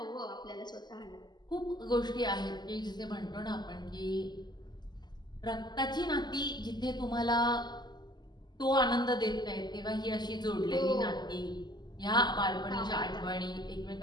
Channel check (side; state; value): right; late; 0.21 ms